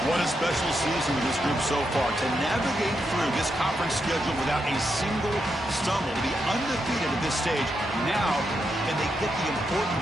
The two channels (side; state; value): both; normal; correlation 0.83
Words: What a special season with this group so far. To navigate through this conference schedule without a single stumble. To be undefeated at this stage. Now, can they get the